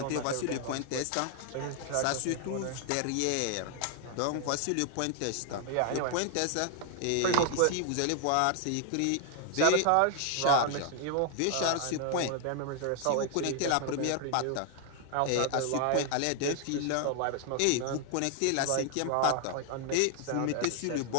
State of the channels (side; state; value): both; different; correlation 0.00